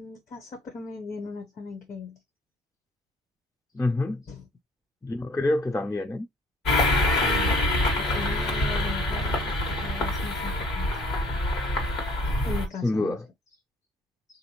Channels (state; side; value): normal; both; correlation 0.58